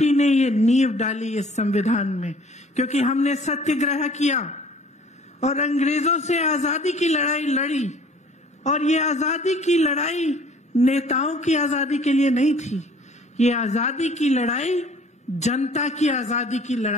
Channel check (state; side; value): normal; both; correlation 0.53